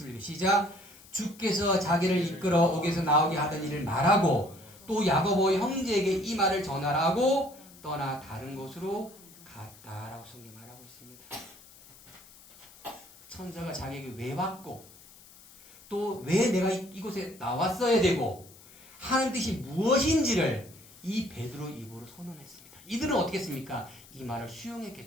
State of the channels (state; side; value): noise; left; hiss, 22 dB below the sound